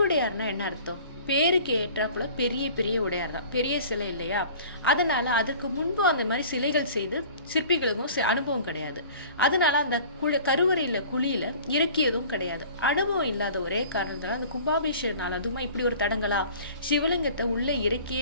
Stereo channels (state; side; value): inverted; both; correlation -0.45